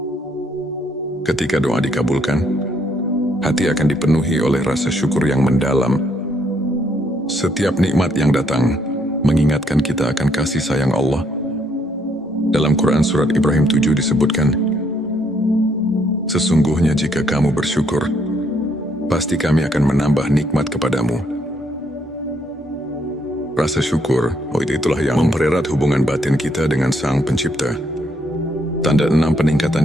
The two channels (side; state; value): both; normal; correlation 0.71